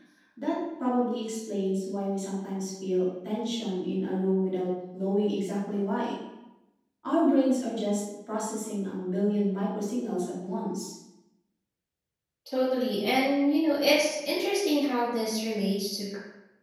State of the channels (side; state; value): both; identical; correlation 1.00